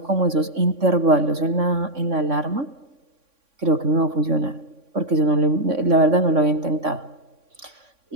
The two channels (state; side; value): late; left; 3.6 ms